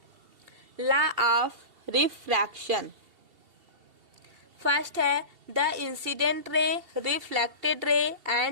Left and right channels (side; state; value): left; late; 2.7 ms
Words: लॉ ऑफ रिफ्रैक्शन। फर्स्ट है, the incident ray, reflected ray